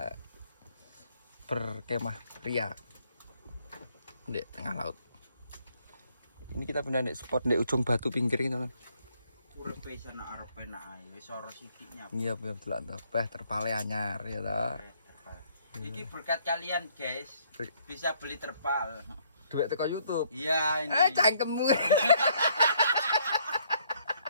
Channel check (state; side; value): inverted; both; correlation -0.67